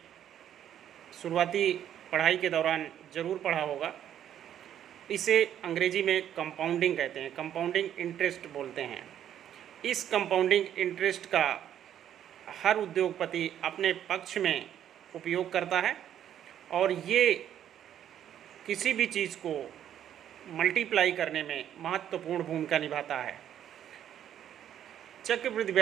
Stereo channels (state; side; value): quieter; left; 10.4 dB